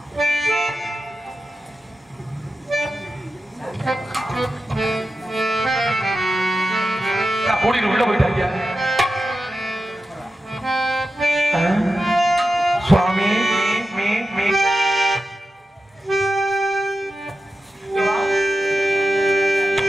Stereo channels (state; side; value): normal; both; correlation 0.91